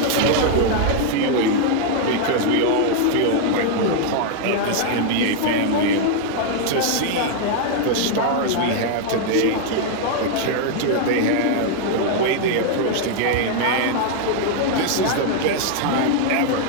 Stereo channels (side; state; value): both; different; correlation 0.00